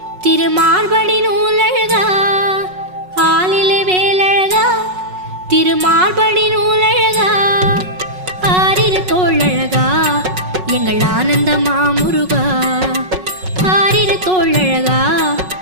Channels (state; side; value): late; left; 5.4 ms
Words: திருமார்படி நூலழகா ஆலிலே வேலழகா திருமார்படி நூலழகா ஆரிரு தோழழகா எங்கள் ஆனந்த மாமுருகா ஆரிரு தோழழகா